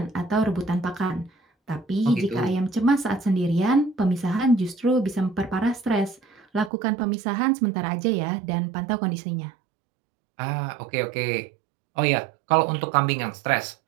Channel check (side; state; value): left; drops out; at 6.7 s